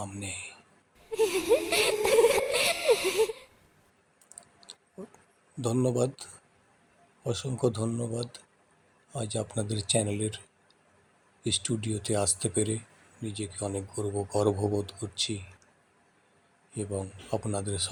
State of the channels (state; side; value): identical; both; correlation 1.00